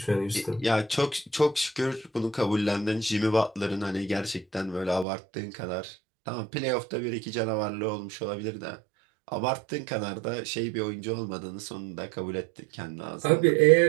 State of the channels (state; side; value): drops out; left; at 5.1 s